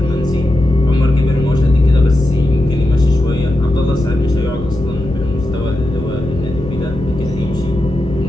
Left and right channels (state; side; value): noise; left; hum, 12 dB below the sound